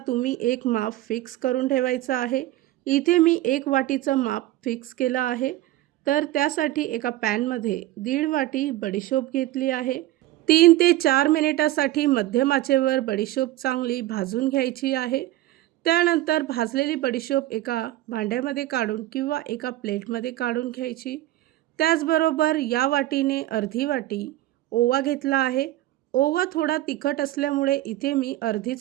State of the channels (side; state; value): left; quieter; 15.6 dB